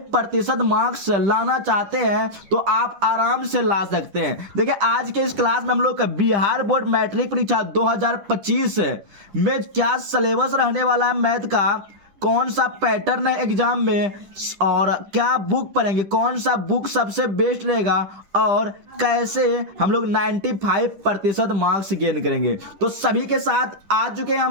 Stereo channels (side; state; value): left; late; 10 ms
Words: मार्क्स लाना चाहते हैं तो आप आराम से ला सकते हैं। देखिए, आज के इस क्लास में हम लोग बिहार बोर्ड मैट्रिक परीक्षा 2025 में क्या सिलेबस रहने वाला है, मैथ का कौन सा पैटर्न है एग्जाम में, और क्या बुक पढ़ेंगे, कौन सा बुक सबसे बेस्ट रहेगा, और कैसे हम लोग 95% मार्क्स गेन करेंगे, तो सभी के साथ आ चुके हैं